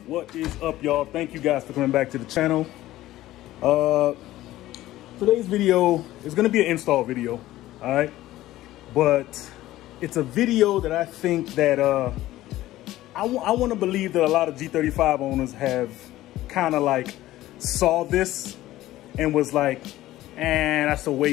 What is up, y'all? Thank you guys for coming back to the channel. Today's video is going to be an install video, all right? But it's a video that I think that I want to believe that a lot of G35 owners have kind of like saw this and was like, that's a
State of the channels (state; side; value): quieter; right; 15.5 dB